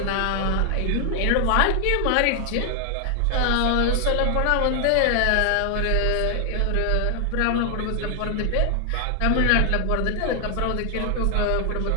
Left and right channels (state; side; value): different; both; correlation 0.00